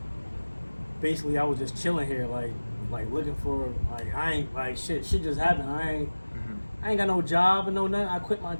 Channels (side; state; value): both; inverted; correlation -1.00